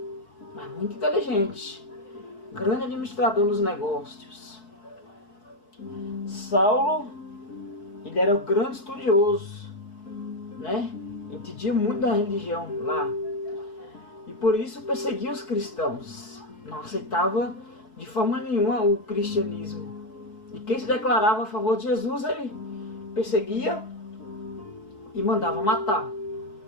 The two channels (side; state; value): right; late; 4.6 ms